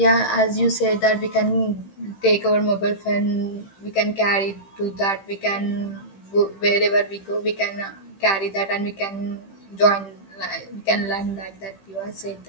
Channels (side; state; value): right; late; 15 ms